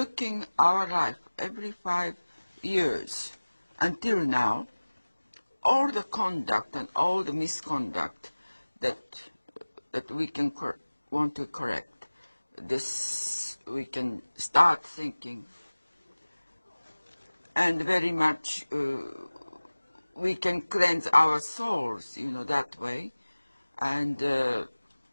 our life every 5 years until now, all the conduct and all the misconduct that we can want to correct, this we can start thinking, and very much we can cleanse our souls, that way. And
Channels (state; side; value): inverted; both; correlation -1.00